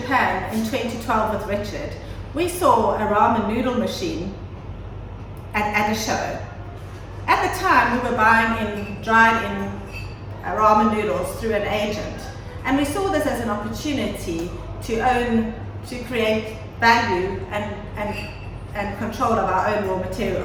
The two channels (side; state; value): both; identical; correlation 1.00